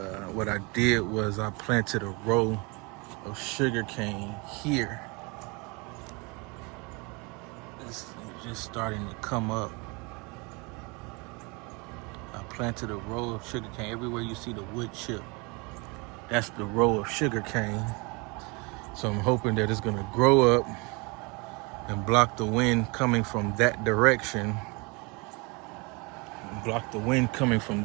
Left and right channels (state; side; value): quieter; left; 28.8 dB